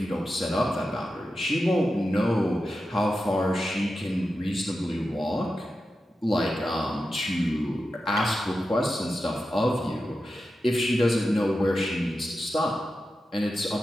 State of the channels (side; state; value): both; normal; correlation 0.91